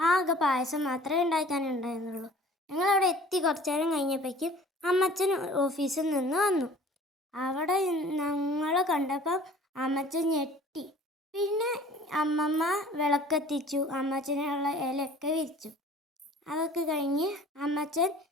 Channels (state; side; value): normal; both; correlation 0.49